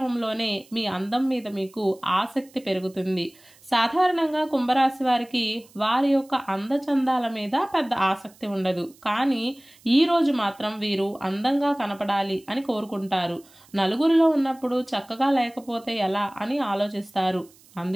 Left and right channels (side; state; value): right; noise; hiss, 27 dB below the sound